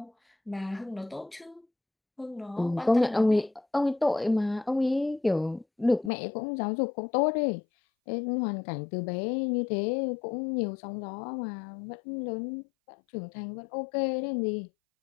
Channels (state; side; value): drops out; right; at 6.1 s